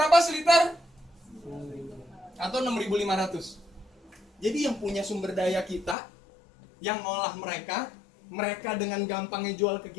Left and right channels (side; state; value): right; drops out; at 6.0 s